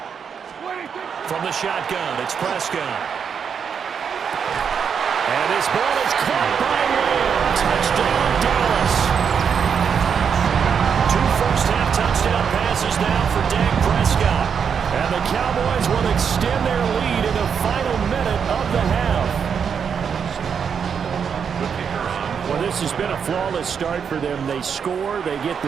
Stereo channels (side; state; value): left; quieter; 7.0 dB